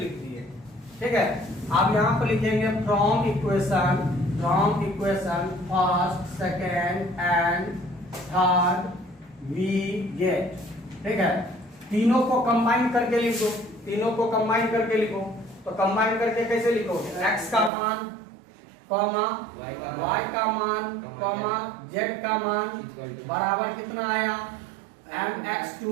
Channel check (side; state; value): left; drops out; at 17.7 s